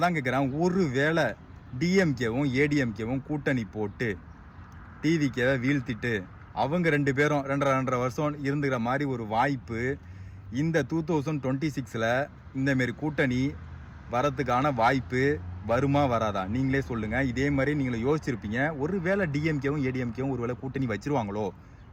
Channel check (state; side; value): identical; both; correlation 1.00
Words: தான் கேட்குறேன், ஒரு வேளை டிஎம்கேவும் ஏடிஎம்கேவும் கூட்டணி போட்டு டிவிக்கேவை வீழ்த்திட்டு அவங்க 2 பேரும் 2.5 வருஷம் இருந்துக்கிற மாதிரி ஒரு வாய்ப்பு இந்த 2026 இந்தமாரி கூட்டணி வரத்துக்கான வாய்ப்பு வருமா வராதா? நீங்களே சொல்லுங்க. இதே மாதிரி நீங்களே யோசிச்சிருப்பீங்க, ஒரு வேளை டிஎம்கேவும் ஏடிஎம்கேவும் ஒரு வேளை கூட்டணி வச்சிருவாங்களோ